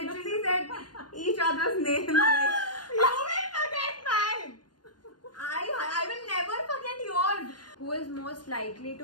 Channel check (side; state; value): right; late; 0.70 ms